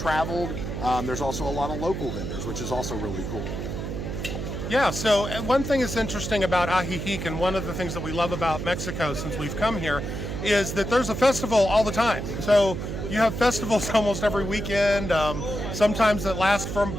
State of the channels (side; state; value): right; noise; hum, 5 dB below the sound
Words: There's also a lot of local vendors, which is also really cool. Yeah, so one thing is interesting about Ajijic, and one of the things that we love about Mexico since we've come here, is that there's a festival all the time. So you have festivals almost every weekend, sometimes that last for